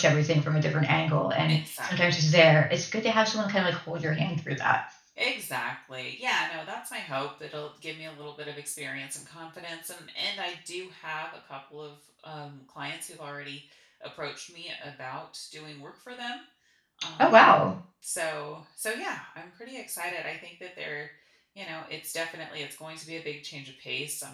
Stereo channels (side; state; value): both; identical; correlation 1.00